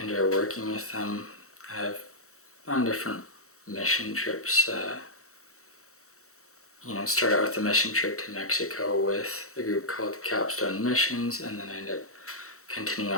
enjoy working with them. I've on different mission trips. Start out with a mission trip to Mexico with a group called Capstone Missions, and then I ended up continuing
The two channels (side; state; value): right; late; 0.64 ms